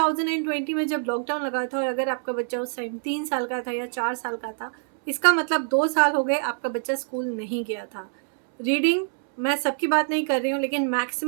में जब लॉकडाउन लगा था और अगर आपका बच्चा उस टाइम 3 साल का था या 4 साल का था, इसका मतलब 2 साल हो गए आपका बच्चा स्कूल नहीं गया था। रीडिंग, मैं सबकी बात नहीं कर रही हूँ, लेकिन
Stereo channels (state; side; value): silent; left; 62 dB below the other